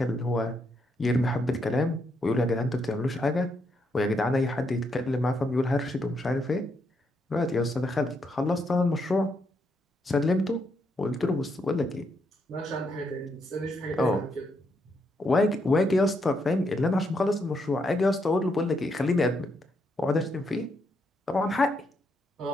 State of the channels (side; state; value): both; normal; correlation 0.78